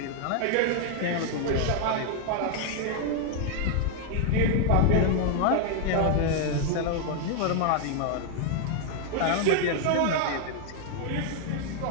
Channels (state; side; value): different; both; correlation 0.00